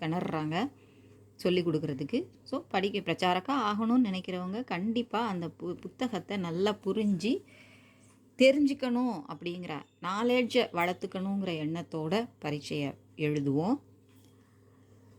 சொல்லி கொடுக்குறதுக்கு. ஸோ பிரச்சாரக்கா ஆகணும்னு நினைக்கிறவங்க கண்டிப்பாக அந்த புத்தகத்தை நல்லா புரிஞ்சு தெரிஞ்சுக்கணும் அப்படிங்கிற நாலேஜை வளர்த்துக்கணுங்கிற எண்ணத்தோட பரீட்சையை எழுதுவோம்.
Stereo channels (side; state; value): both; identical; correlation 1.00